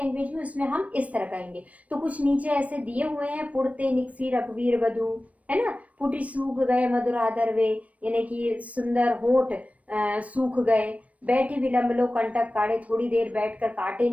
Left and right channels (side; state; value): left; late; 0.067 ms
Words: में उसमें हम इस तरह कहेंगे। तो कुछ नीचे ऐसे दिए हुए हैं, पुड़ते निकसी रघुवीर बधु, है ना, पुटी सूख गए मधुराधर वे, यानी कि सुंदर होठ सूख गए, बैठी विलंब लो कंटक काढ़े, थोड़ी देर बैठकर कांटे